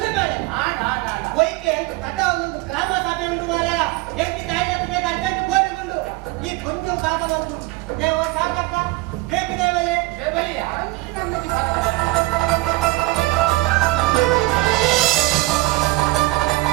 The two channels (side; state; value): left; quieter; 20.0 dB